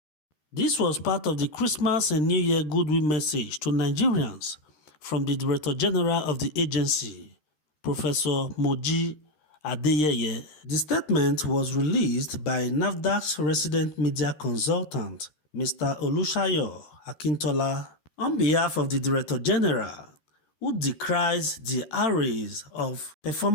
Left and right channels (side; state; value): right; late; 13 ms